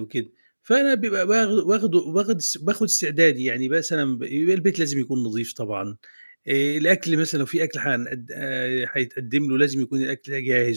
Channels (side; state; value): both; inverted; correlation -1.00